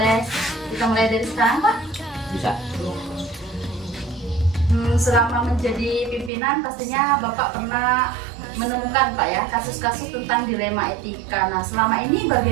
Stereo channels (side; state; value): left; drops out; at 6.3 s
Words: kita mulai dari sekarang, Pak? bisa. Selama menjadi pimpinan pastinya Bapak pernah menemukan Pak ya kasus-kasus tentang dilema etika. Nah, selama ini